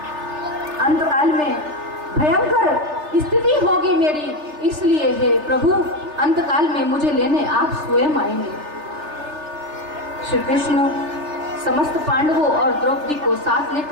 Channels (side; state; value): left; late; 3.3 ms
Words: अंतकाल में भयंकर स्थिति होगी मेरी, इसलिए हे प्रभु, अंतकाल में मुझे लेने आप स्वयं आएंगे। श्री कृष्ण समस्त पांडवों और द्रौपदी को साथ